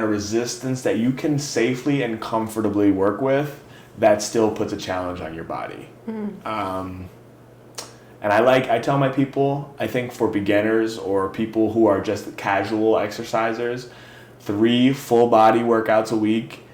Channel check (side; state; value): both; identical; correlation 1.00